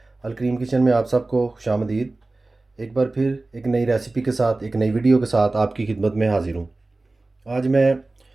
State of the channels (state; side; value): quieter; left; 3.1 dB